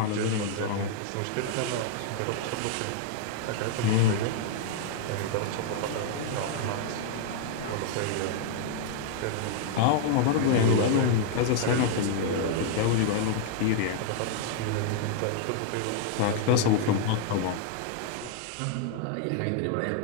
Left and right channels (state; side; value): different; both; correlation -0.01